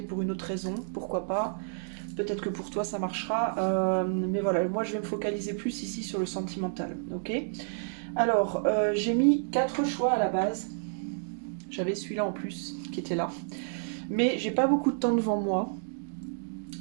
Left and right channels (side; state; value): left; silent; digital silence